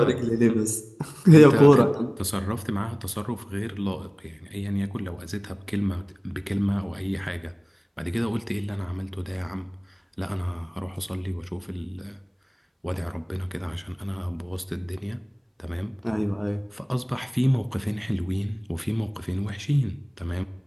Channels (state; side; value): identical; both; correlation 1.00